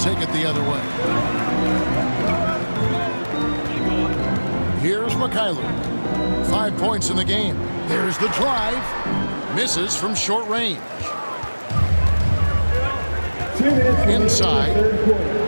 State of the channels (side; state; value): both; inverted; correlation -1.00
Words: it the other way. Here's MYLEAGUE. 5 points in the game. There's the drive. Misses from short range. Inside.